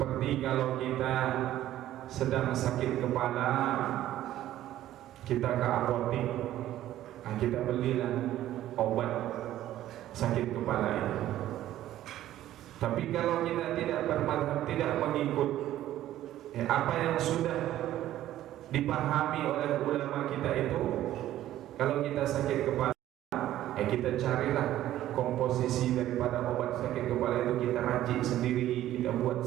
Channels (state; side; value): quieter; left; 13.3 dB